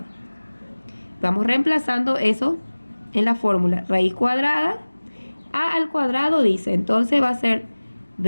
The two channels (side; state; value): both; inverted; correlation -1.00